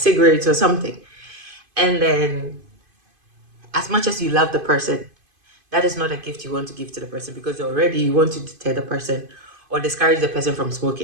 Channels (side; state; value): left; late; 2.5 ms